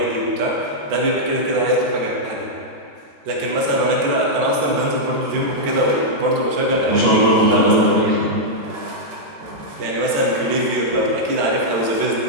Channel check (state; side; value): late; left; 14 ms